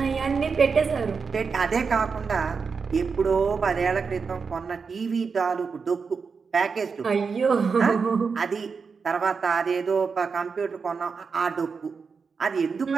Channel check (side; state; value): left; quieter; 5.3 dB